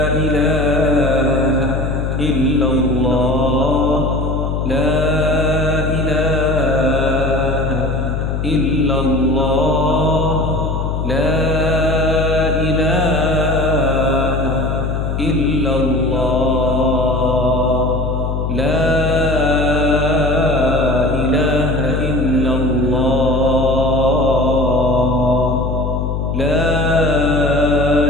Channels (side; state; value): left; noise; hum, 1 dB below the sound